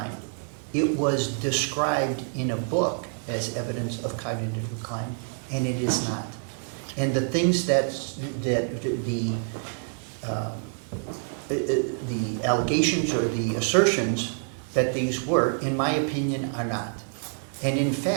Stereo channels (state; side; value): silent; left; 60 dB below the other